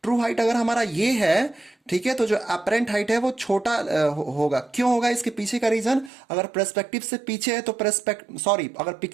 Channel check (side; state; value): left; drops out; at 6.1 s